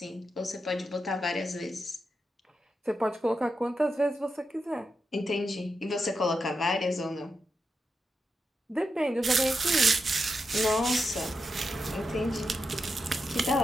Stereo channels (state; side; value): normal; both; correlation 0.87